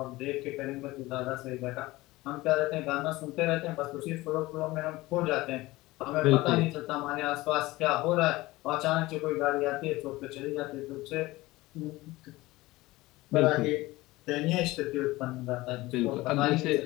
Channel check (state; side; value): quieter; right; 19.5 dB